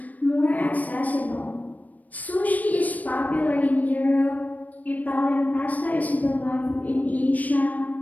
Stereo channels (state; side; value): late; right; 0.076 ms